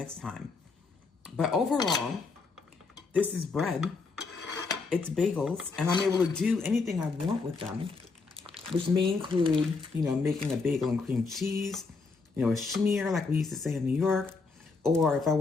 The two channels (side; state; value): right; quieter; 4.3 dB